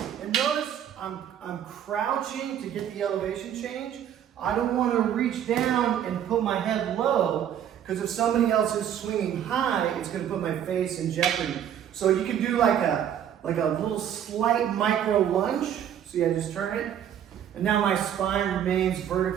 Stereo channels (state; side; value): quieter; left; 9.8 dB